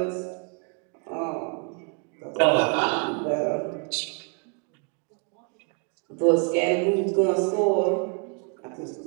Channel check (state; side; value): quieter; left; 37.8 dB